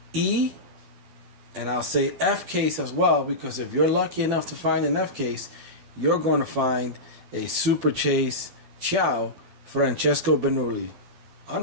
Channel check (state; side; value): late; left; 12 ms